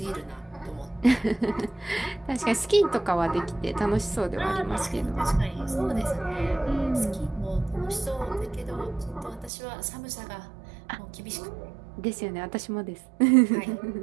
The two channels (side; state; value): left; drops out; at 9.5 s